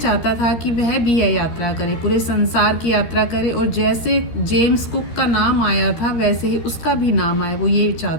था कि वह भी यह यात्रा करे, पूरे संसार की यात्रा करे और जैसे जेम्स कुक का नाम आया था वैसे ही उसका भी नाम आए, वो ये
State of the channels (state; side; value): late; right; 13 ms